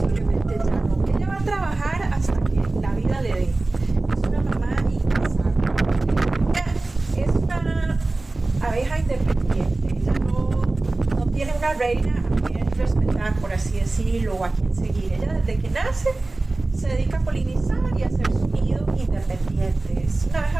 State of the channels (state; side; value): quieter; left; 3.1 dB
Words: ya no. Ella va a trabajar hasta que la vida le dé. Es una mamá incansable. Ella es una abeja independiente. Ella no tiene una reina a quien respetar, por así decirlo, o a quien seguir. Ella desde que nace se dedica a polinizar y a hacer su nido independiente. Es una